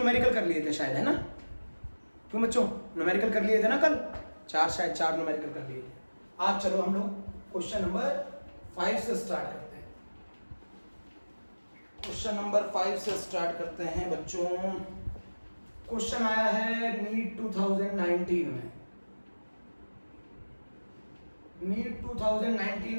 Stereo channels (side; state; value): both; inverted; correlation -1.00